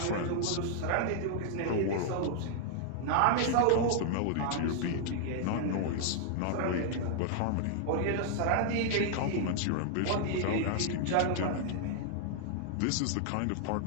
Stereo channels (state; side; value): different; both; correlation -0.01